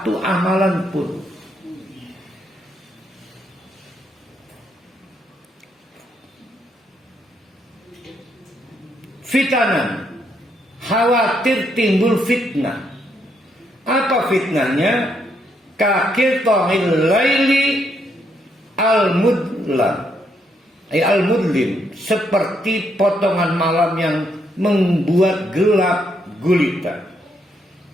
amalan pun. Fitanan, khawatir timbul fitnah. Apa fitnahnya? Kakil tohil laili al-mudlam, al-mudlim, seperti potongan malam yang membuat gelap gulita.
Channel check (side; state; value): both; normal; correlation 0.75